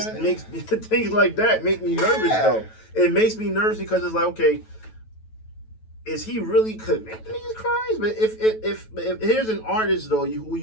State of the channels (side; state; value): right; late; 9.2 ms